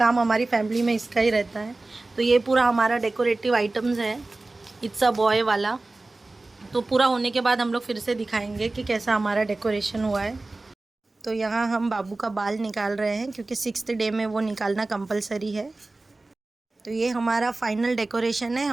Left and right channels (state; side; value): quieter; left; 3.1 dB